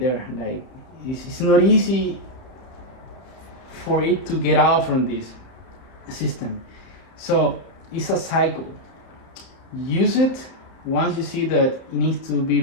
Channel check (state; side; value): late; right; 31 ms